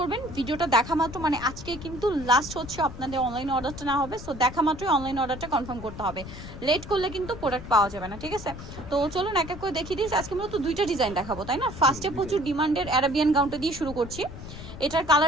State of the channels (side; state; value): left; noise; rumble, 12 dB below the sound